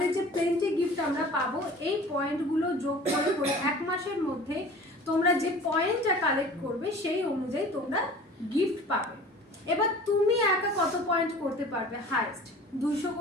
যে প্লেন্টি গিফট আমরা পাবো, এই পয়েন্টগুলো যোগ করে করে 1 মাসের মধ্যে তোমরা যে পয়েন্টটা কালেক্ট করবে সেই অনুযায়ী তোমরা গিফট পাবে। এবার তুমি একা কত পয়েন্ট করতে পারবে? হাইস্ট 200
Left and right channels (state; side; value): normal; both; correlation 0.43